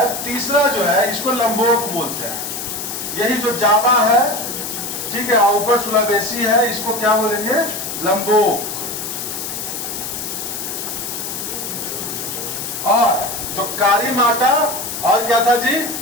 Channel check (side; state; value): left; noise; hiss, 6 dB below the sound